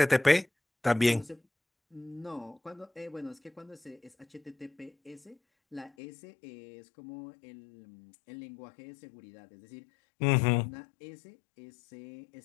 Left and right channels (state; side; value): drops out; right; at 5.9 s